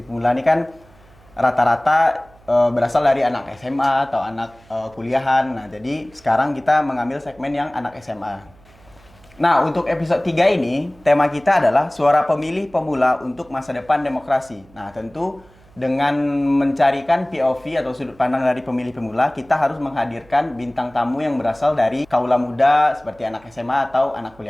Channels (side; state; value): right; noise; hum, 27 dB below the sound